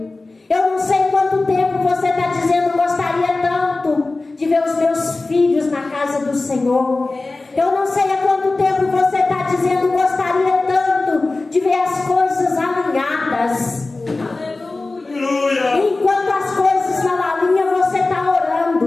Eu não sei quanto tempo você está dizendo: gostaria tanto de ver os meus filhos na casa do Senhor. Eu não sei há quanto tempo você está dizendo: gostaria tanto de ver as coisas alinhadas. Enquanto as coisas não alinham, você está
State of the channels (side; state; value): right; quieter; 3.3 dB